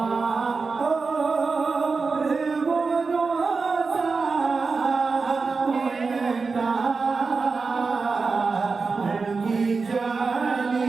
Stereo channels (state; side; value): quieter; left; 4.5 dB